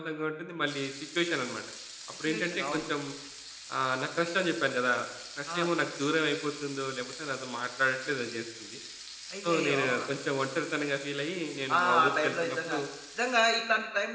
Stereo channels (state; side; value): identical; both; correlation 1.00